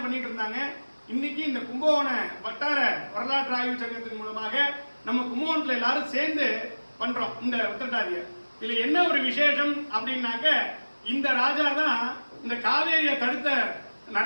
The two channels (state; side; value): inverted; both; correlation -1.00